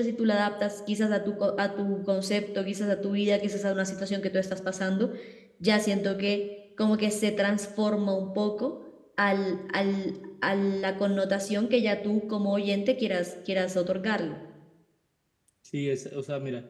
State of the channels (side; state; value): both; identical; correlation 1.00